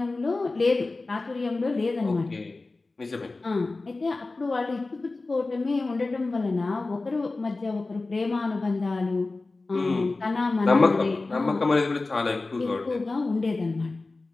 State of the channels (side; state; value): right; quieter; 3.4 dB